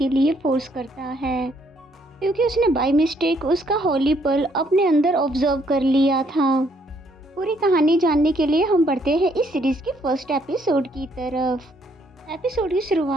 लिए फोर्स करता है क्योंकि उसने बाय मिस्टेक उसका होली पल अपने अंदर ऑब्जर्व कर लिया था। पूरी कहानी जानने के लिए हम बढ़ते हैं इस सीरीज के फर्स्ट एपिसोड की तरफ। एपिसोड की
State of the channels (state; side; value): normal; both; correlation 0.69